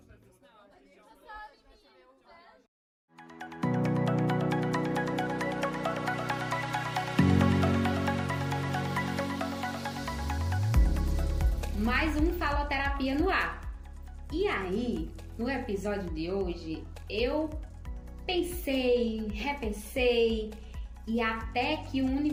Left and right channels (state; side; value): identical; both; correlation 1.00